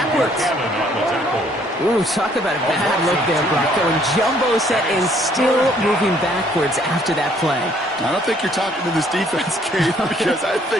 Ooh, talk about a bad look there, Brock. Going jumbo set and still moving backwards after that play. I don't think you're talking to this defense, Kate, because I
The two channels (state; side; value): normal; both; correlation 0.63